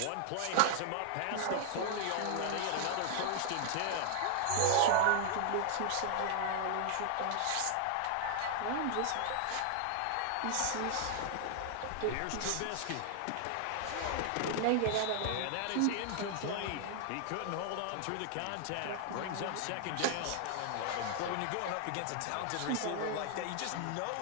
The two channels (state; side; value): different; both; correlation -0.01